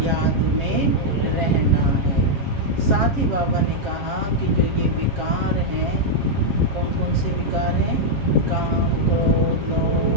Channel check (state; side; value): late; left; 7.4 ms